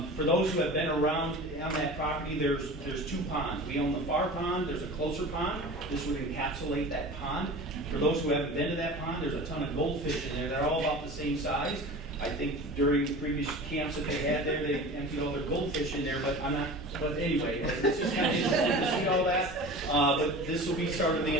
For those who have been around on that property, there's 2 ponds. We own the far pond, there's a closer pond. This would encapsulate that pond. For those who haven't been to that pond, there's a ton of goldfish in there. They're all about the same size. I think during the previous camps that they had there, they emptied all their goldfish in there, but but anyway, it's just kind of interesting to see all that. But this will be sort of the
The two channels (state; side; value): normal; both; correlation 0.36